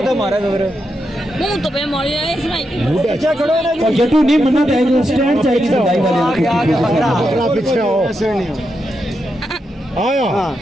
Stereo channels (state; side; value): normal; both; correlation 0.85